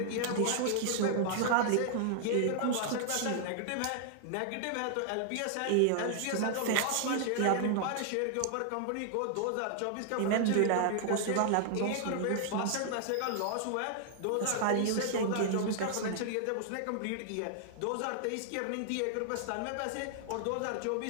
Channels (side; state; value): both; different; correlation 0.00